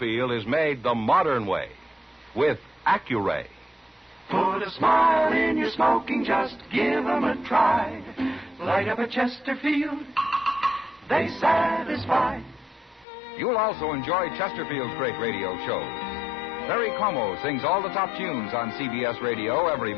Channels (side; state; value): right; drops out; at 13.1 s